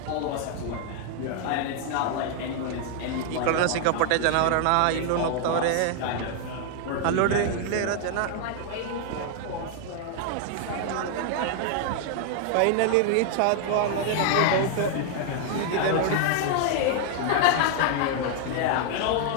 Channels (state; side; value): different; both; correlation 0.00